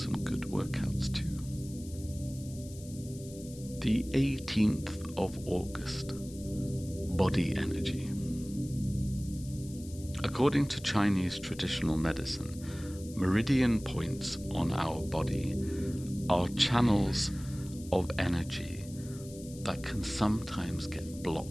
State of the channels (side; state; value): left; noise; hiss, 18 dB below the sound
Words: good workouts too. The 18th of August, body energy. According to Chinese traditional medicine, meridian points on our body are channels of energy that can sometimes get